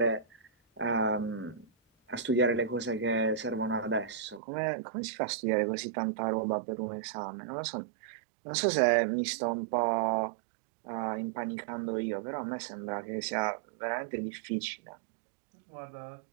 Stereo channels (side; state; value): left; drops out; at 4.4 s